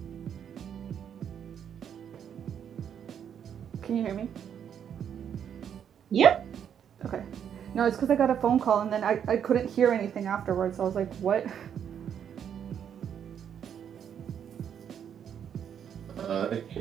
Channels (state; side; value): quieter; left; 8.5 dB